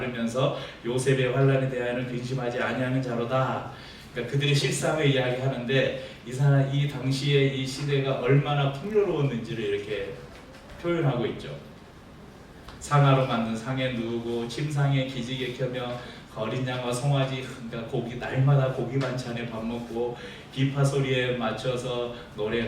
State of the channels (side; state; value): both; identical; correlation 1.00